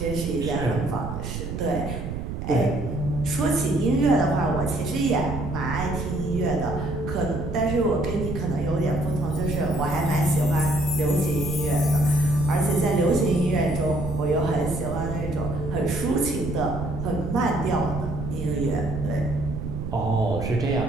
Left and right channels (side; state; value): right; noise; rumble, 5 dB below the sound